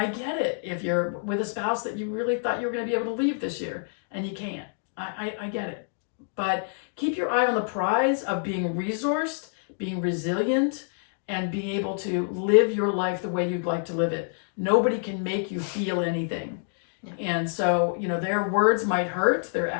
get it if you're with a spouse that you really thought you were going to be able to leave this year and you can't. I get it. But keep your eye on the prize of being resourced, being resilient, and being able to live your life the way you'd like to live it. Nobody can make you feel anything. Yeah. And so, their words might hurt, their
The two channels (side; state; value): right; silent; digital silence